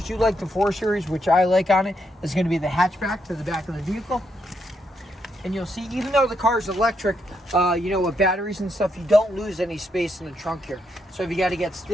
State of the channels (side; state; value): both; normal; correlation 0.78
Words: do like the 4 Series, which I like on it. It's going to be the hatchback to the back of the vehicle. And you'll see, even though the car is electric, with batteries and stuff, you don't lose any space in the trunk here. So if you got to get